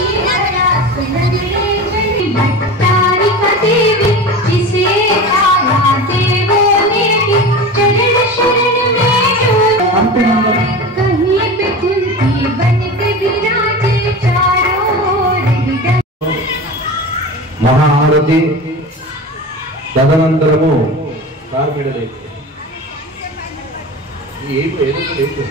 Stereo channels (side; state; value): both; normal; correlation 0.30